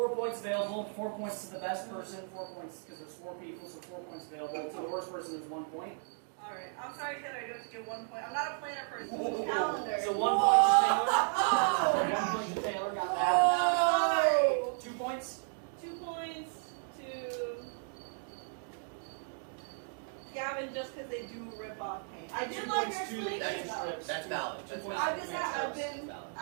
points available. 4 points to the best person. 4 points because there's 4 people, so 4 points available. To the worst person is 1 point. Alright. I'm sorry, Taylor. I do have to give 1 point. I'm not a planner person. Calendar. So 1 point to Taylor. 1 point to Taylor. Got that. Oh! 2 points. 2 points to Gavin just because they do rip off paint. I did like your explanation though. That's valid. That's valid. I've just had, Valid.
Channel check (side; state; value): left; silent; 55 dB below the other